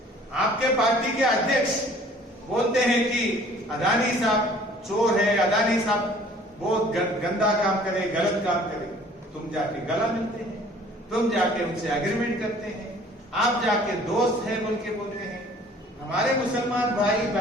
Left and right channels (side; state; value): both; normal; correlation 0.53